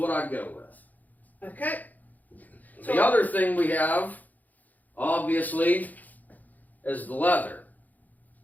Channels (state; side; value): late; right; 0.081 ms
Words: I'd go with. Okay. The other thing we have, obviously, is the leather.